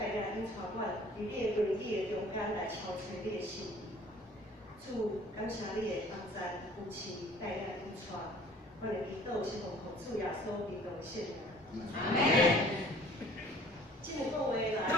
领引带阮，伫你的荣义的中间来超找你的心意。主，感谢你的帮助扶持带领引带，阮的祈祷是奉主耶稣基督的圣名。阿门。今日讲话来，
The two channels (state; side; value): normal; both; correlation 0.51